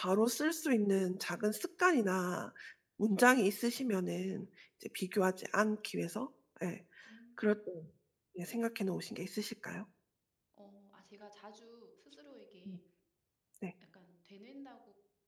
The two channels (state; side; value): identical; both; correlation 1.00